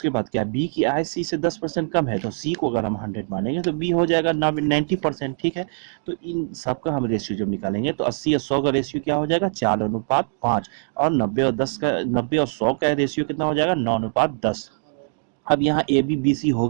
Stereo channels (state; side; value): silent; left; digital silence